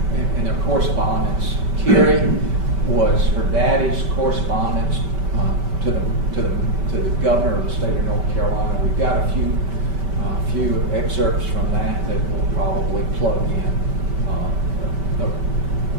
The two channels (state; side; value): late; left; 5.2 ms